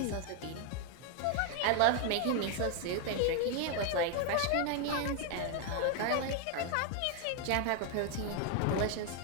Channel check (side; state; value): both; different; correlation 0.01